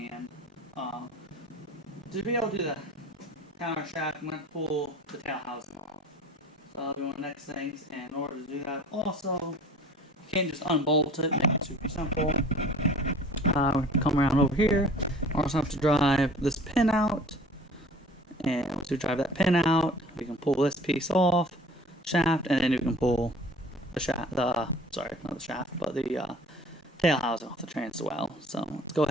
To be able to do the counter shaft, I'm going to pull the tail housing off. So I'll do one of the next things, and in order to do that also, you can't just unbolt it, make it super simple. We have to come around over here. We also have to drive this pin out, and once we drive that pin out, we can pull this piece off, shaft, and then we can pull the shaft, sorry, not the shaft, but the tail housing off the train as well. So let's go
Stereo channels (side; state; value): both; normal; correlation 0.46